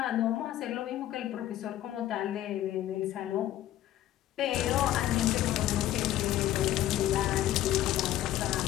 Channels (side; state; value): right; quieter; 13.2 dB